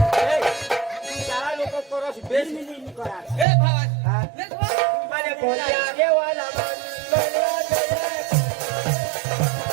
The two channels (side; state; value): left; drops out; at 3.5 s